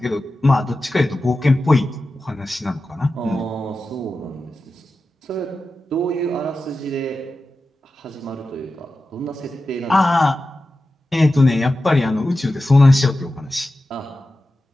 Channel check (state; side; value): normal; both; correlation 0.93